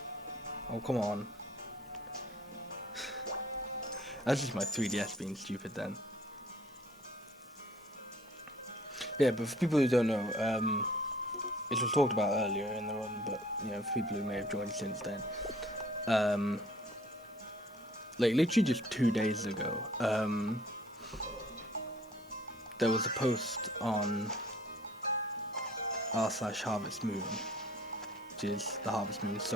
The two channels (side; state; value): both; normal; correlation 0.56